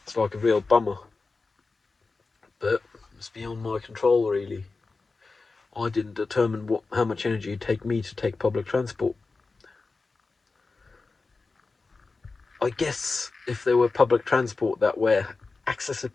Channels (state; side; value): quieter; right; 4.0 dB